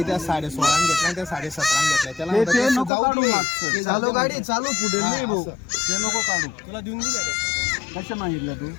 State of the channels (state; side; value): drops out; right; at 2.9 s